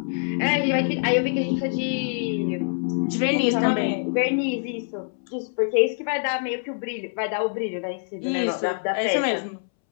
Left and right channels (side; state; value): right; silent; 62 dB below the other